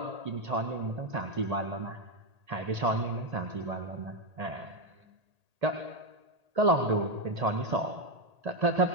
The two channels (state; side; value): late; left; 1.8 ms